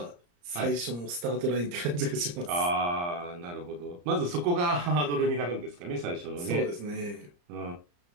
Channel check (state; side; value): late; left; 34 ms